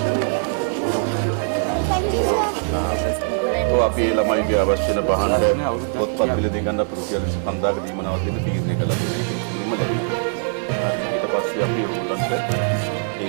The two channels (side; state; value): left; silent; digital silence